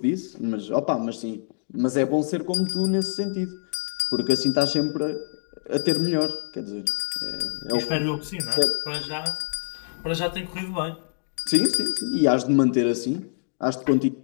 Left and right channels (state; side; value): silent; right; digital silence